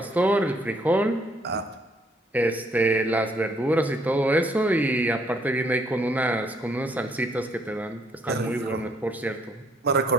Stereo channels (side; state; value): both; normal; correlation 0.67